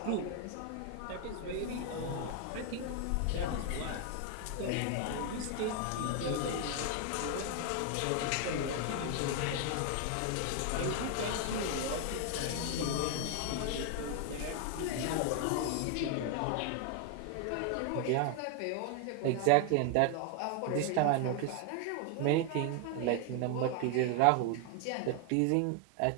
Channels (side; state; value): both; different; correlation 0.00